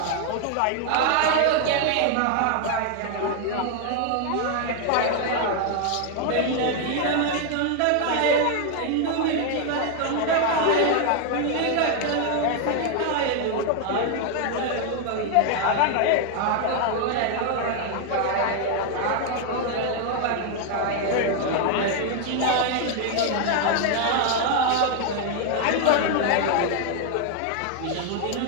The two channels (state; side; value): different; both; correlation 0.00